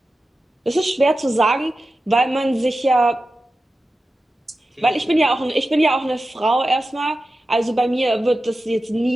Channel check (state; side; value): normal; both; correlation 0.93